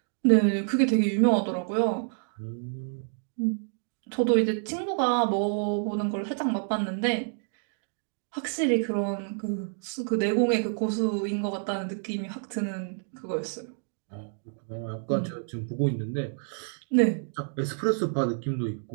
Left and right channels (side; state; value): left; silent; digital silence